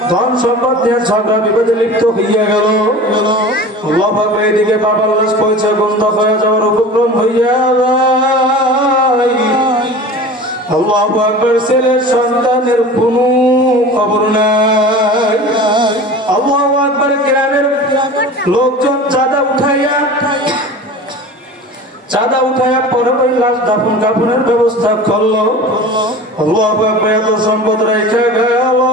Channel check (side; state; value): both; normal; correlation 0.37